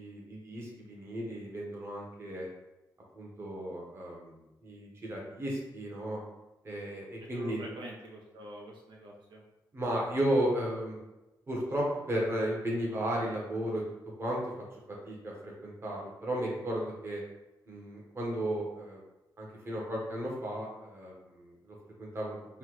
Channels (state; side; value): normal; both; correlation 0.78